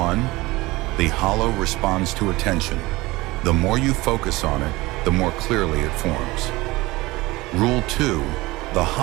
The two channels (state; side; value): quieter; left; 20.7 dB